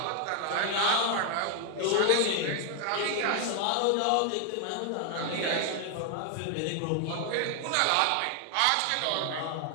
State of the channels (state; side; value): different; both; correlation 0.00